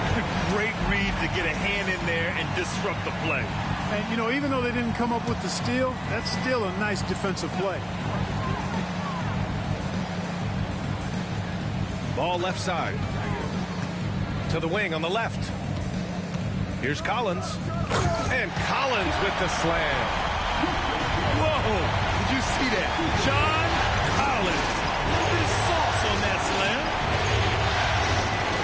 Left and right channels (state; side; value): identical; both; correlation 1.00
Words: Great read to get a hand in there and disrupt the play. And, you know, even though they didn't come up with the steal, that's still a nice defensive play. Ball left side. To the wing on the left. Here's Collins. And Collins with the slam. Whoa! Did you see that? John Collins. His sauce on that slam.